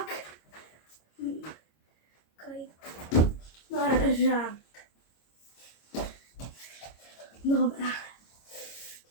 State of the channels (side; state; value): right; late; 26 ms